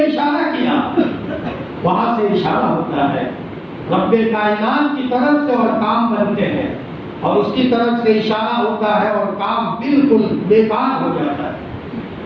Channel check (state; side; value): identical; both; correlation 1.00